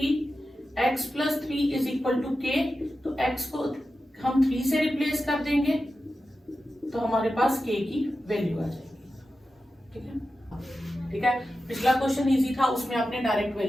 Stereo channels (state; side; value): normal; both; correlation 0.92